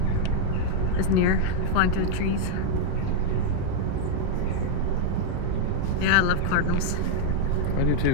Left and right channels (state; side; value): different; both; correlation -0.01